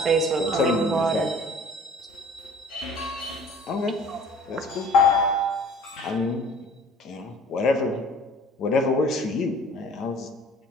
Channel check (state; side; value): normal; both; correlation 0.49